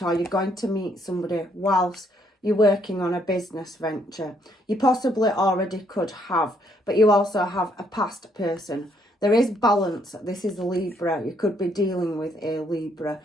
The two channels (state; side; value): normal; both; correlation 0.70